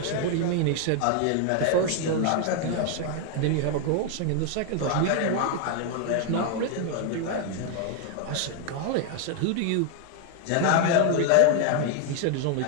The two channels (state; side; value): different; both; correlation 0.00